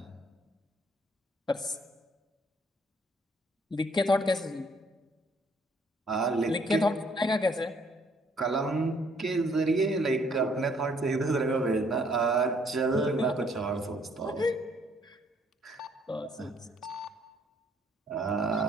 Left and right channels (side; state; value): both; normal; correlation 0.64